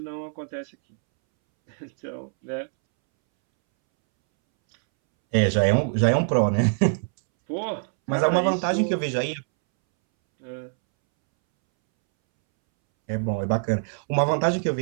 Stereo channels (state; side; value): silent; left; 62 dB below the other